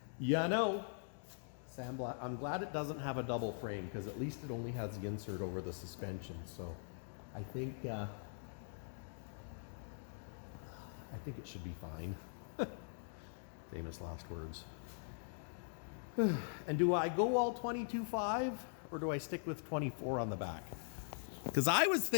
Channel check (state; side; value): silent; right; digital silence